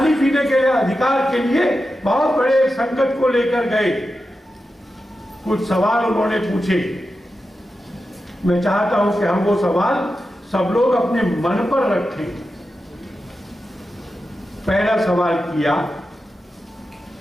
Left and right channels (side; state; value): both; normal; correlation 0.91